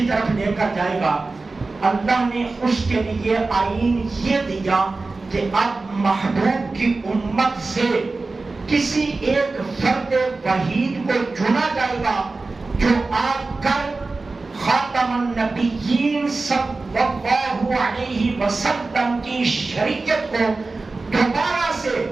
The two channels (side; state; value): left; quieter; 3.6 dB